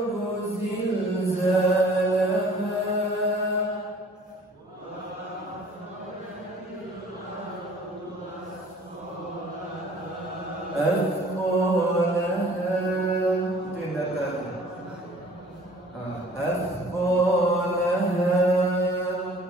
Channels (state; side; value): normal; both; correlation 0.52